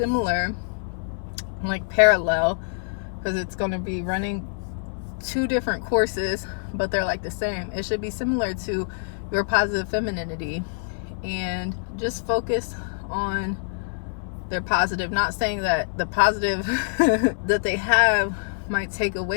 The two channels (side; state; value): right; silent; digital silence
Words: like parallel, because it's going to be running 2 different courses, but they're like the same. It should be similar to your positive femininity, and just focus on their positive. Not saying that the positive that they have might take